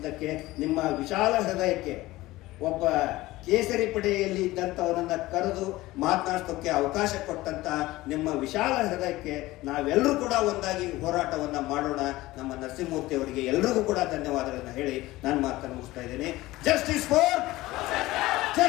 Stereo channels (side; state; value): right; quieter; 18.3 dB